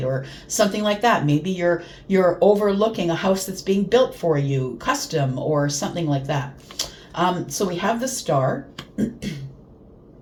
or something like that. Maybe you're overlooking a house that's being built for you, custom or something like that. So we have the Star.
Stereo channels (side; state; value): both; identical; correlation 1.00